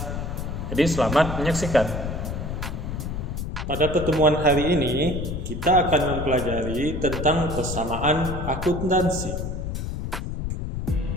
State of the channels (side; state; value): left; noise; rumble, 4 dB below the sound